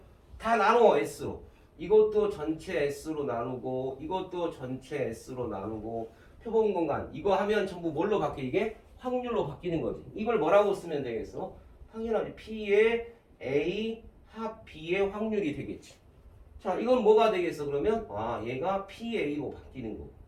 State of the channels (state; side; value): identical; both; correlation 1.00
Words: 다 나눠 S로. 이것도 전체 S로 나누고 이것도 전체 S로 나누고 표본 공간 이거 하면 전부 뭘로 바뀌어? 이게 확률로 바뀌는 거지. 이걸 뭐라고 쓰면 되겠어? 당연하지. P의 A 합 B의 확률이 되겠지. 자, 이건 뭐가 되겠어? 그러면 얘가 PA로 바뀌는 거고